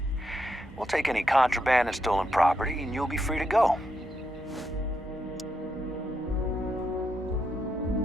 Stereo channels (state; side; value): normal; both; correlation 0.81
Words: We'll take any contraband and stolen property, and you'll be free to go.